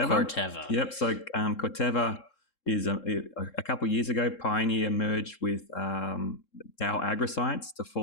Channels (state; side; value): late; right; 3.7 ms